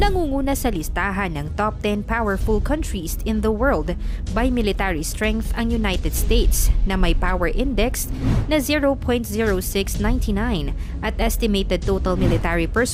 sa listahan ng top 10 powerful countries in the world by military strength ang United States na may power index na 0.0699 at estimated total military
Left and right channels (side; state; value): both; identical; correlation 1.00